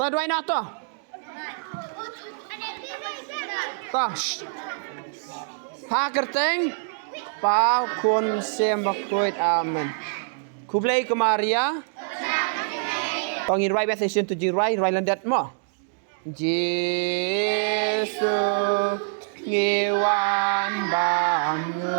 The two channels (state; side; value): silent; left; digital silence